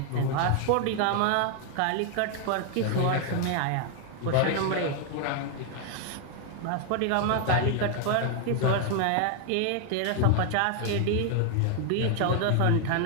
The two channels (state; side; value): different; both; correlation 0.00